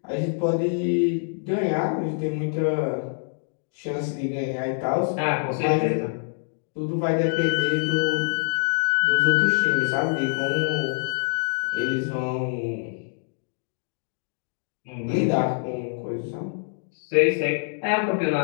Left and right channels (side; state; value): right; silent; digital silence